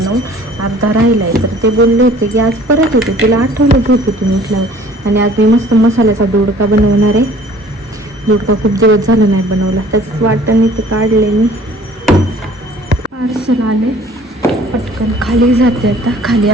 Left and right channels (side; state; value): both; normal; correlation 0.52